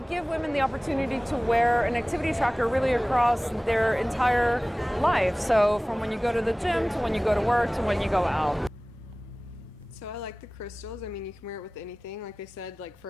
give women the opportunity to wear an activity tracker really across their entire life. So from when you go to the gym to when you go to work to when you go out. So I like the crystals. I mean, you can wear it with anything, like they said, like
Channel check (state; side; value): normal; both; correlation 0.98